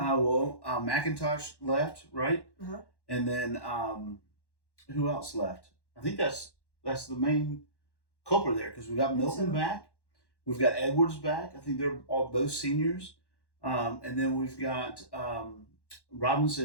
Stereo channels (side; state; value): right; late; 1.1 ms